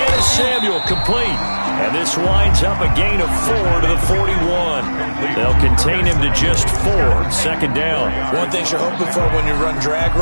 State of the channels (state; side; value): inverted; both; correlation -1.00